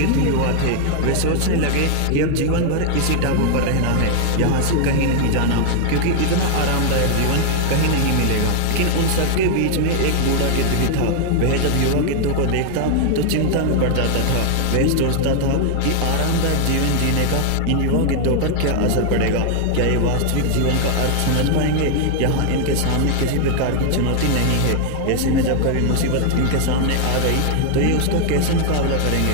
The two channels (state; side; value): different; both; correlation 0.00